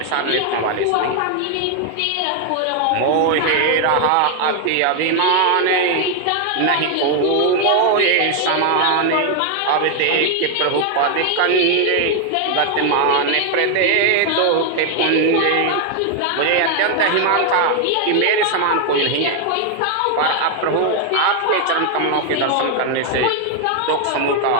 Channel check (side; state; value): both; different; correlation 0.01